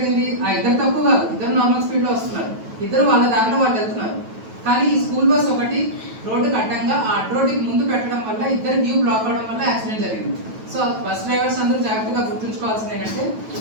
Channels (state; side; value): late; left; 9.1 ms